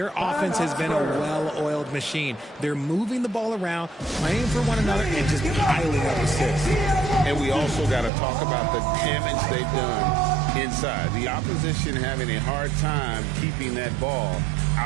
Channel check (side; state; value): left; drops out; at 8.1 s